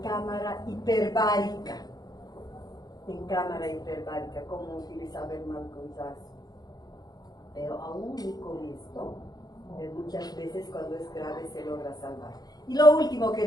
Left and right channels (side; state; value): right; late; 0.19 ms